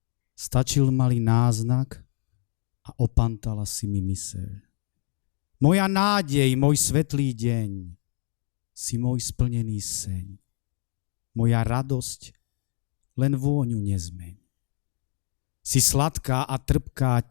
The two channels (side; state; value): right; silent; 61 dB below the other